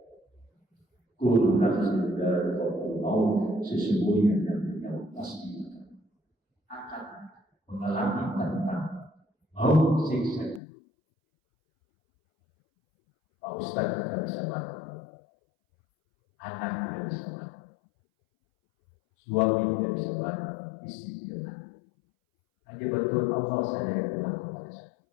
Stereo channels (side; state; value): right; drops out; at 10.6 s